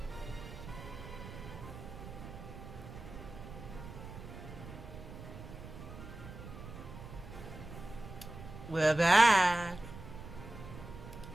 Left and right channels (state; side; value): noise; right; rumble, 12 dB below the sound